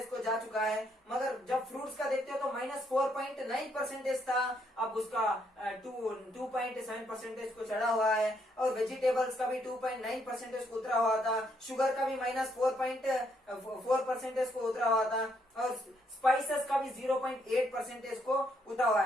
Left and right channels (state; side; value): normal; both; correlation 0.73